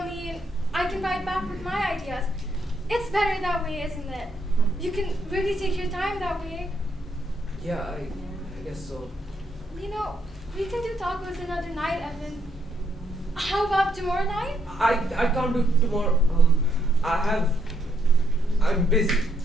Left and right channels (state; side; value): normal; both; correlation 0.74